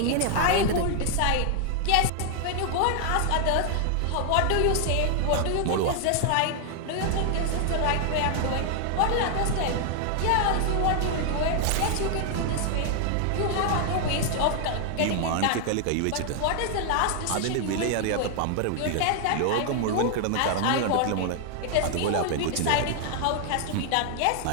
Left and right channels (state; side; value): different; both; correlation 0.00